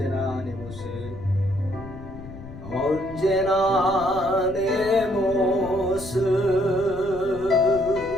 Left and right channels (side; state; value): left; noise; rumble, 14 dB below the sound